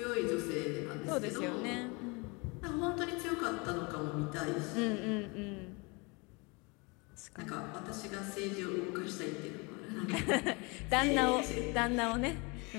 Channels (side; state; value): right; quieter; 28.7 dB